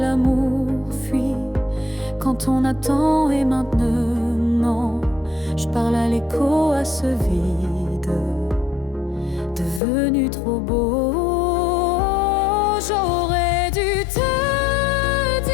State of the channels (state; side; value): drops out; right; at 9.8 s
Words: fuit quand on attend. Et maintenant, je parle à l'écho, à ce vide devenu trop beau. J'aurais dû te